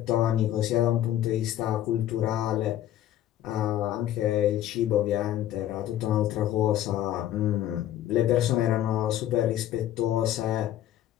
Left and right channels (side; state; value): right; quieter; 12.3 dB